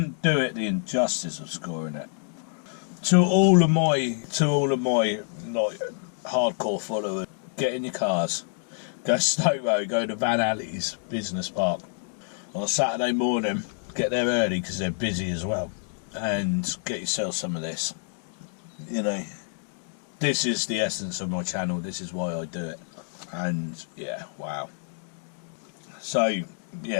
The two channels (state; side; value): silent; right; digital silence